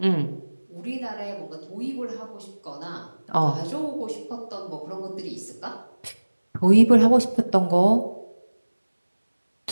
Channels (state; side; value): inverted; both; correlation -1.00